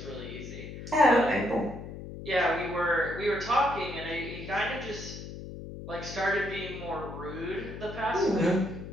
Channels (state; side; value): noise; left; hum, 10 dB below the sound